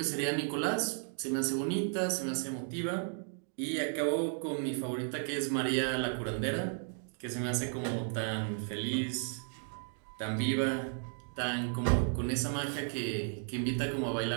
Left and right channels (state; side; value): silent; left; 55 dB below the other